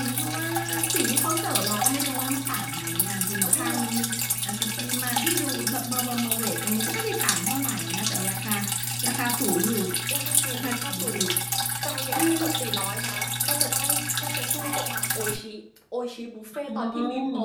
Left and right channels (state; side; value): identical; both; correlation 1.00